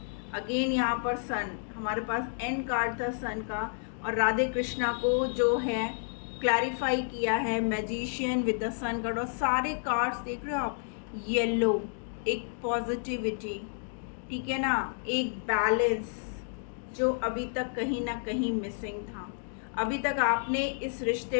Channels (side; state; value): right; silent; digital silence